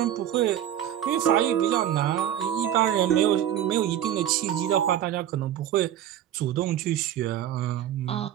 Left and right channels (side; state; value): left; quieter; 10.9 dB